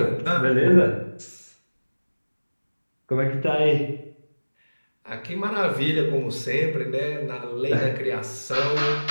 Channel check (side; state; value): both; inverted; correlation -1.00